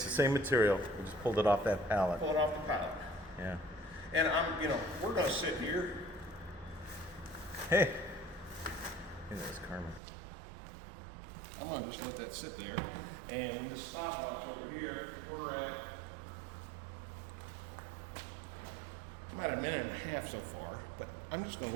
the same material. We just pulled it off that pallet. Pull it off the pallet. Yeah. And you know, we're going to sit here. Hey. Hey, there's Carmen. I'm going to just let that sit there. And the stopwatch over here, we're at about a minute and a half so far. But I'm just going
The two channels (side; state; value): left; drops out; at 10.0 s